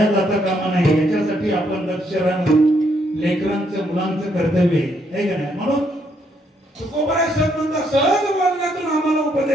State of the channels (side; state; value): both; normal; correlation 0.73